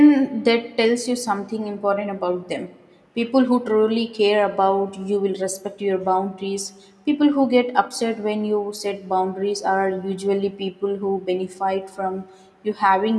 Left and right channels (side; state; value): both; identical; correlation 1.00